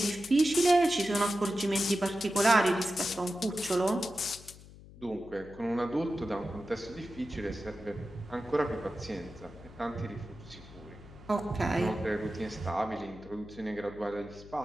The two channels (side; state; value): left; noise; hum, 19 dB below the sound